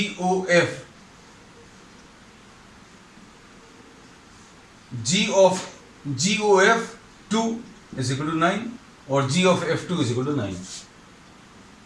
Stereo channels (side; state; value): both; identical; correlation 1.00